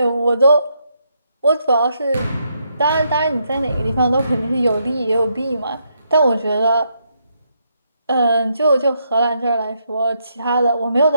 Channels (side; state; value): both; inverted; correlation -0.78